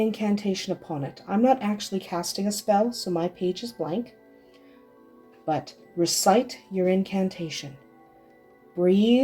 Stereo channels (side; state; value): both; identical; correlation 1.00